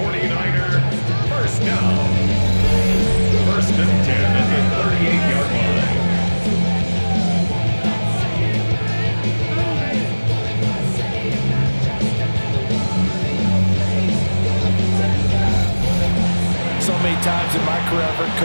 first down. First and 10 at the 38-yard line. So many times in my career, I've heard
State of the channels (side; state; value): both; inverted; correlation -1.00